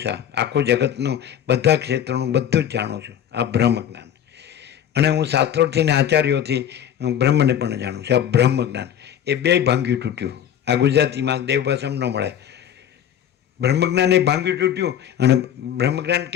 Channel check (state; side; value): quieter; right; 9.8 dB